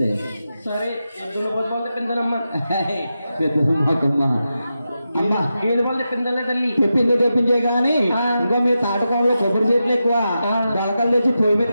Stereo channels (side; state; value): both; inverted; correlation -0.90